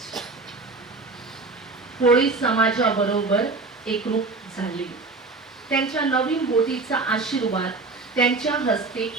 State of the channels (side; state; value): left; quieter; 3.7 dB